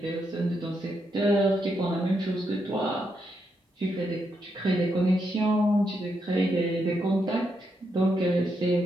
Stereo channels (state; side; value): normal; both; correlation 0.81